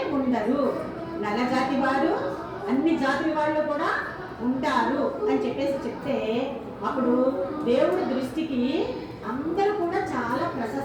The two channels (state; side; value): identical; both; correlation 1.00